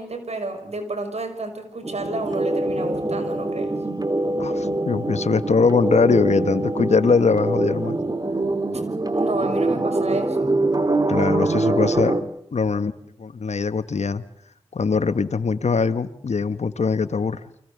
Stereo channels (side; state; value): both; normal; correlation 0.72